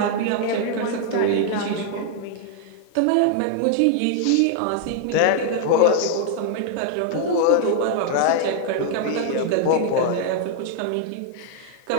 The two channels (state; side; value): different; both; correlation 0.00